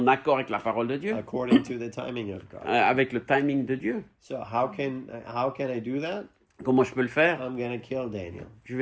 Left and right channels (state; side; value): identical; both; correlation 1.00